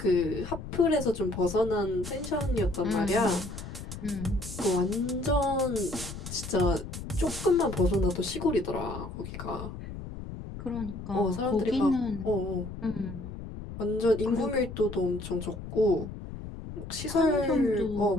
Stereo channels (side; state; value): left; noise; rumble, 10 dB below the sound